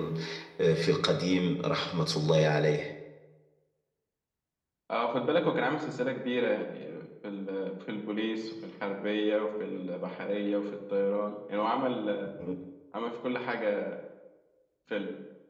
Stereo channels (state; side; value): identical; both; correlation 1.00